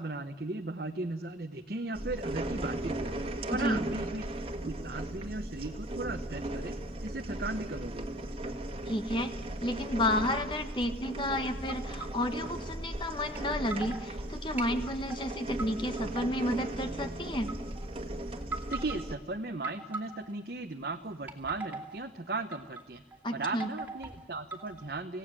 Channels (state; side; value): normal; both; correlation 0.49